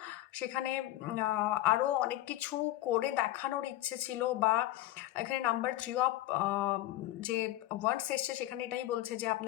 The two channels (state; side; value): quieter; right; 15.5 dB